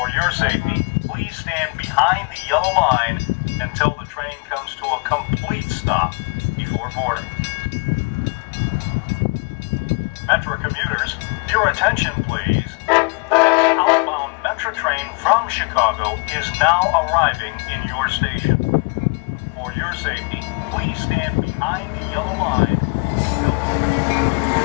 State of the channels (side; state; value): right; quieter; 33.4 dB